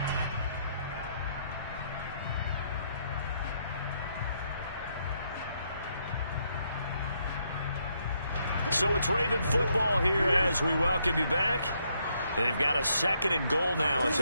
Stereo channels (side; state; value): both; inverted; correlation -0.75